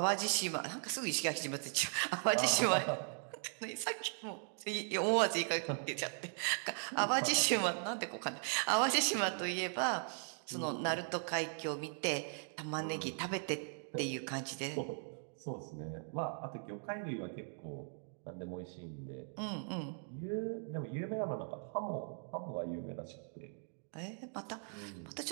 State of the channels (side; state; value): left; silent; 52 dB below the other